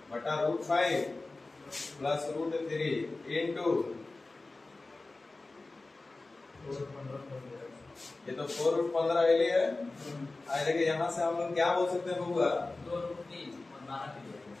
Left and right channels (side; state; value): right; quieter; 3.3 dB